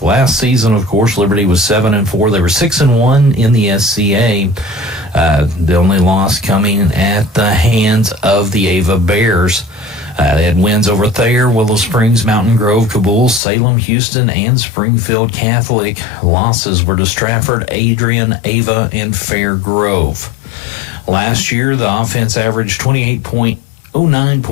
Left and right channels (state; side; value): drops out; right; at 13.4 s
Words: Last season, of course, Liberty was 7-4. They were 6-1 in the SCA. The only loss coming at the hands of the Ava Bears. They had wins over Thayer, Willow Springs, Mountain Grove, Kabul, Salem, Houston, and Springfield Catholic. Losses were to Stratford, Adrian, Ava, and Fair Grove. Last year, the offense averaged 28.0 0.09